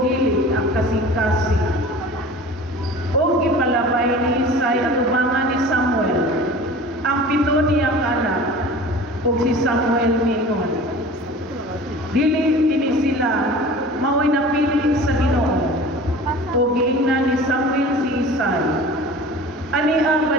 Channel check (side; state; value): both; normal; correlation 0.40